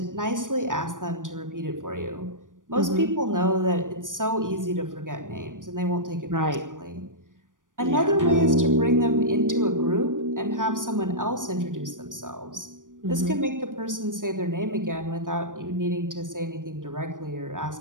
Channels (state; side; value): late; left; 0.88 ms